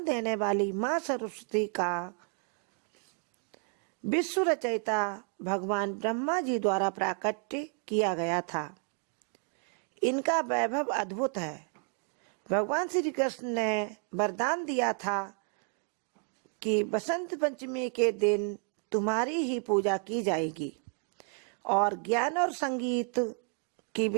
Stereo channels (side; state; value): left; quieter; 39.2 dB